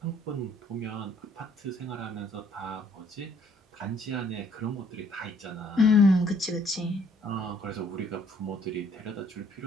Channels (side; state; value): both; normal; correlation 0.63